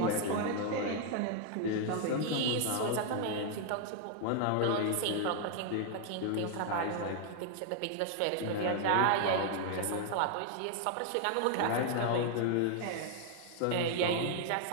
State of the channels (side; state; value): both; different; correlation 0.00